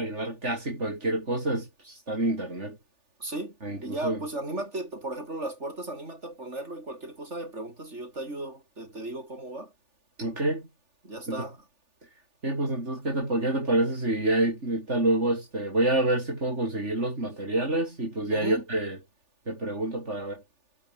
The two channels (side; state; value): left; late; 3.4 ms